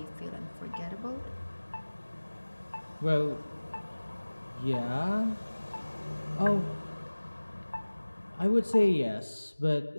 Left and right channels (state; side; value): inverted; both; correlation -1.00